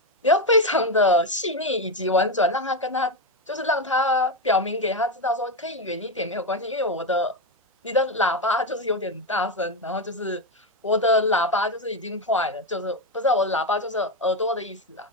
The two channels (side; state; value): both; normal; correlation 0.10